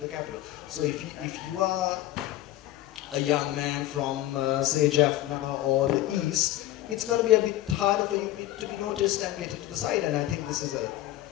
capital. So if you are a young man from, say, Jaffna or the East, it's going to be a bit harder for you to be noticed and get into the side. And I think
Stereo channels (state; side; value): quieter; right; 14.9 dB